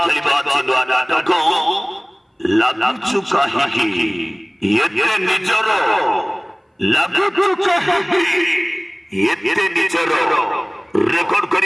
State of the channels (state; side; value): identical; both; correlation 1.00